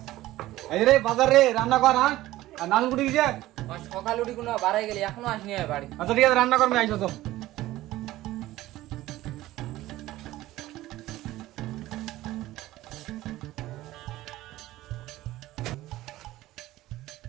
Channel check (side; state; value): left; quieter; 16.2 dB